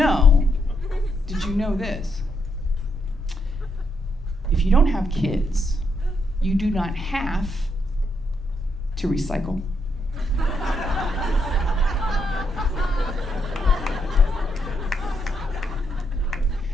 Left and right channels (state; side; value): normal; both; correlation 0.78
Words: this? If you don't have kids, you do not have to recycle.